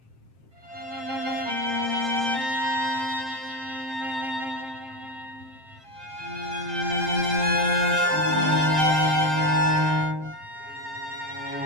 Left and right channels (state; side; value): late; left; 7.6 ms